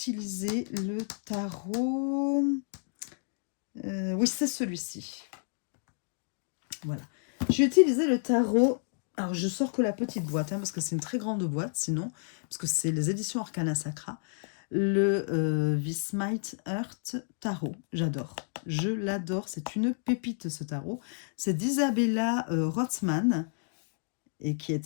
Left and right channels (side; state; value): right; silent; digital silence